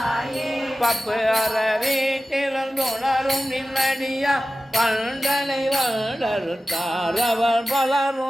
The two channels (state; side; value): normal; both; correlation 0.95